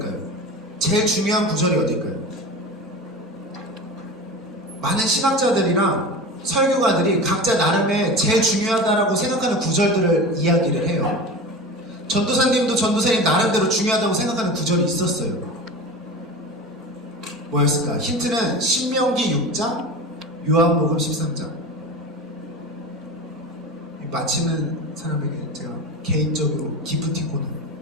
제일 중요한 구절이 어딜까요? 많은 신학자들이랑 설교가들이 각자 나름의 제일 중요하다라고 생각하는 구절들을 이야기를 해요. 전도사님도 전도사님 나름대로 중요하다고 생각하는 구절이 있었어요. 뭐였을까? 힌트는 신명기 6장, 요한복음 13장. 맞히는 사람에게 제가 개인적으로 기프티콘을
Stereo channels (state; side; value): normal; both; correlation 0.30